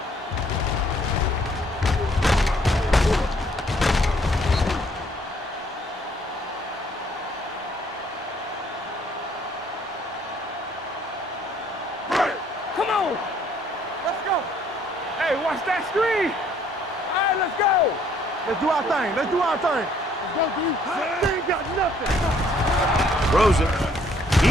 Come on. Let's go. Hey, watch that screen. All right, let's go. Let's do our thing. Let's do our thing. Let's go, dude. They ain't got nothing. Throws it.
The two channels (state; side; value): normal; both; correlation 0.63